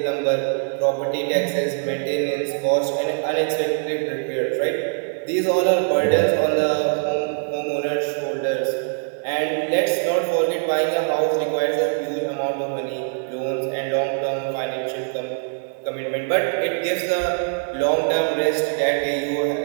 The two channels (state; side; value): silent; left; 64 dB below the other